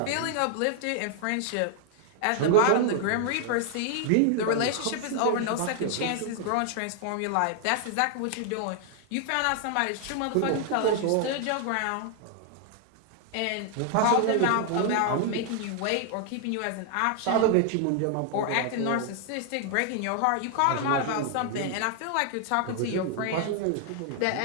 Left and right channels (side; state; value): both; different; correlation 0.00